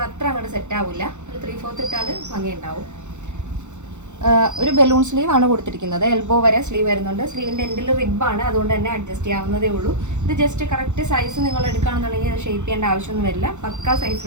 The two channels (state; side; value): late; left; 0.84 ms